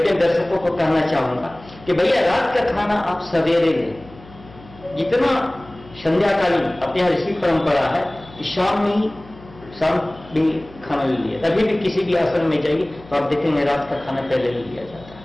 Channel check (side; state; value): left; noise; hum, 21 dB below the sound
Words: दर्शकों को कहना चाहूंगा कि भैया रात का खाना आप सवेरे लें। जितना संध्याकालीन अपने यहाँ ऋषि परंपरा है कि शाम भी खाना ले लिया, तभी भी किसी भी आश्रम में जाइए तो आप देखेंगे रात का खाना पहले ही लिया जाता है,